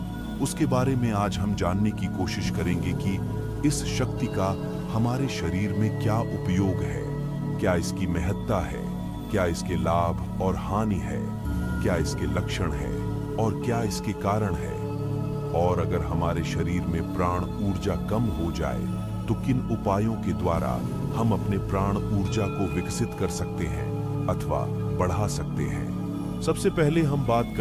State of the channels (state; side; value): identical; both; correlation 1.00